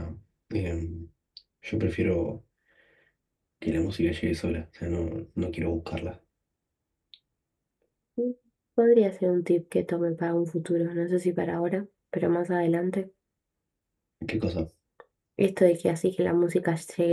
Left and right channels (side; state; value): both; identical; correlation 1.00